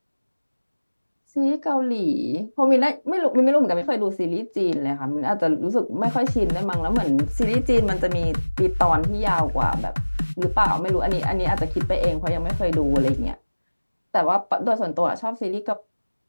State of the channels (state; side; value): inverted; both; correlation -1.00